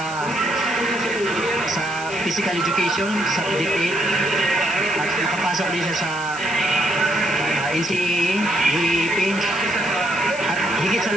physical education, sa DepEd, at makapasok din siya sa NCAA, UAAP, at higit sa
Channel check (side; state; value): left; noise; hiss, 14 dB below the sound